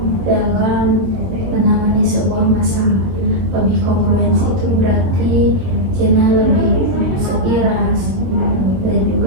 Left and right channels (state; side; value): late; left; 22 ms